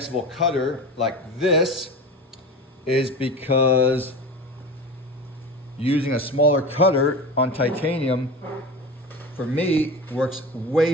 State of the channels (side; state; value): both; normal; correlation 0.30